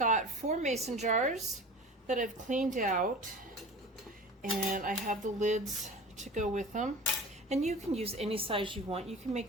4 mason jars that I've cleaned out, and I have the lids to go with them. And you can use any size you want. You can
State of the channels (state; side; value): normal; both; correlation 0.37